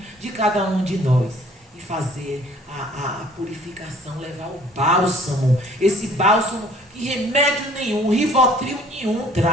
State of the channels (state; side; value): normal; both; correlation 0.55